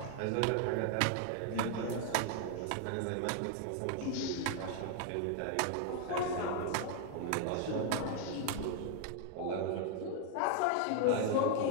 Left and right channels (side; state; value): both; different; correlation 0.00